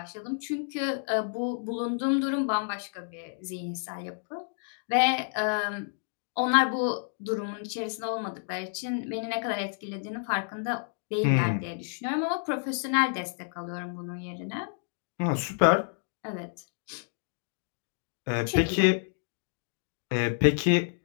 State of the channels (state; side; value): silent; right; digital silence